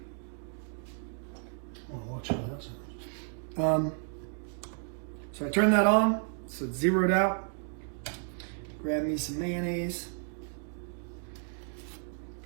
Oh, watch out, that's so I turn that on, so it's zeroed out. Grab me some mayonnaise.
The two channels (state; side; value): silent; left; 56 dB below the other